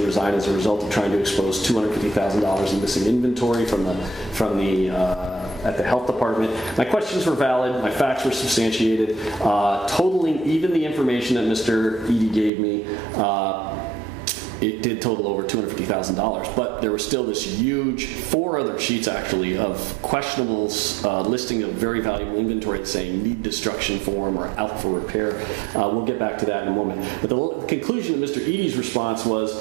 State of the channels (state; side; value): drops out; left; at 12.5 s